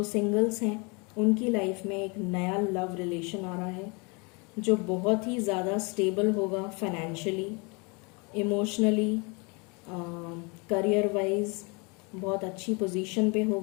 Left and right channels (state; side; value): quieter; right; 30.5 dB